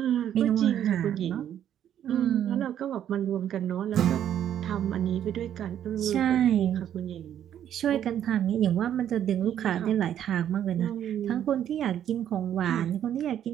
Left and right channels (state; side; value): quieter; left; 10.3 dB